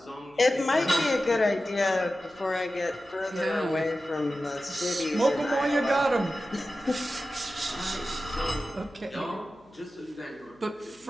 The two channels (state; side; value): noise; left; hum, 29 dB below the sound